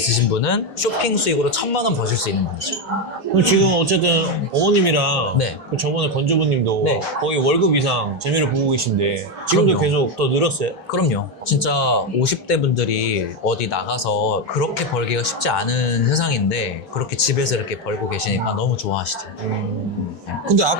분은 쇼핑 수익으로 1,000만 원 버실 수 있는 분이죠. 그럼 지금 어쨌든 어머님이랑 네. 그 저번에 건조부님도 네. 거의 월급 이상 재미를 보고 계신데 지금도 그럼요. 계속 더 늘었어요? 그럼요. 진짜 50대 분들이 어디 나가서 그렇게 벌기가 쉽지 않은 세상인데 그렇게 집에서 이렇게 벌고 계시니까 너무 좋아하시죠. 근데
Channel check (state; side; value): normal; both; correlation 0.08